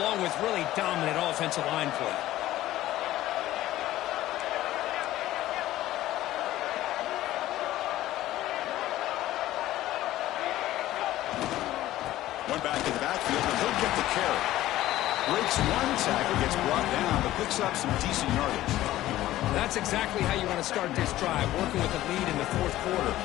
with really dominant offensive line play. One back in the backfield, and he'll get the carry. Breaks one tackle, gets brought down, but picks up some decent yardage. That's exactly how you want to start this drive, working with the lead in the fourth quarter.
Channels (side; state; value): right; quieter; 14.9 dB